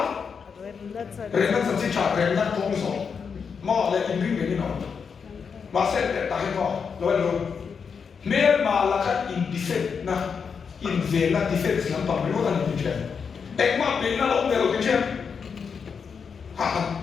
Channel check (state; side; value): quieter; right; 6.1 dB